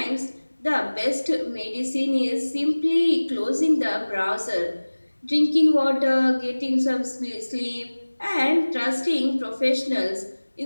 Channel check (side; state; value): both; inverted; correlation -1.00